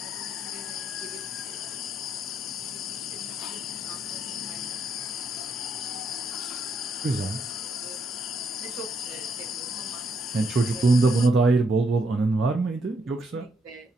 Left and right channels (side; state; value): both; normal; correlation 0.75